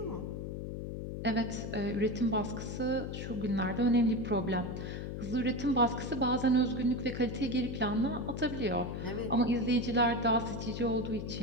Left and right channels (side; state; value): left; noise; hum, 5 dB below the sound